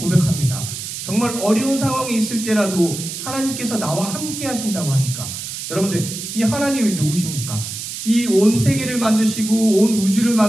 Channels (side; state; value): right; noise; hiss, 7 dB below the sound